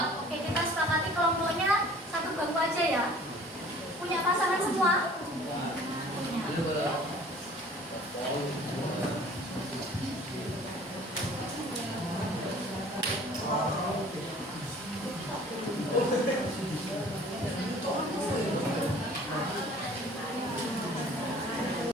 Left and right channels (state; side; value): normal; both; correlation 0.49